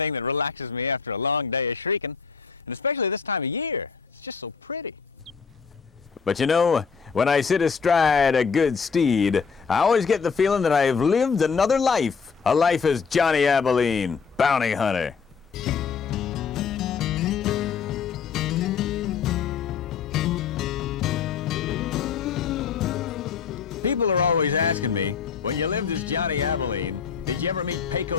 that relaxes me after a long day of shrieking. And especially this time of year. It's just so pretty. But you know, when I sit astride a good steed, I always get the feeling that I've lived another life. A life as Johnny Abilene, bounty hunter. People are always asking me, when you lived as Johnny Abilene, did you ever meet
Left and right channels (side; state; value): right; quieter; 5.9 dB